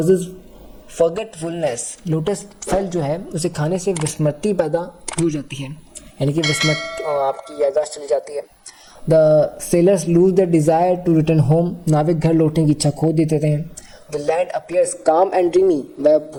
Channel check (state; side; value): identical; both; correlation 1.00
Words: forgetfulness, lotus फल जो है उसे खाने से विस्मृति पैदा हो जाती है, यानी कि विस्मृत आपकी याददाश्त चली जाती है। The sailors lose the desire to return home, नाविक घर लौटने की इच्छा खो देते हैं। The land appears calm and dreamy, वह